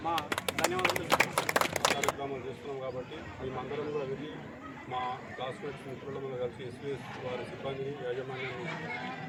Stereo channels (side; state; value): both; identical; correlation 1.00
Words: మా ధన్యవాదాలు. కార్యక్రమాలు చేస్తున్నాం కాబట్టి మేమందరం కూడా వెళ్ళి మా క్లాస్మేట్స్ మిత్రులందరూ కలిసి ఎస్వీఎస్ వారి సిబ్బందిని, యాజమాన్యాన్ని